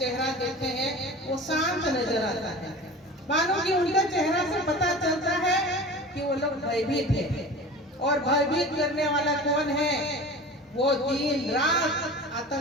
देखते हैं वो शांत नजर आता है, मानो कि उनका चेहरा से पता चलता है कि वो लोग भयभीत है। और भयभीत करने वाला कौन है, वो दिन रात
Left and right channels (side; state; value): both; normal; correlation 0.36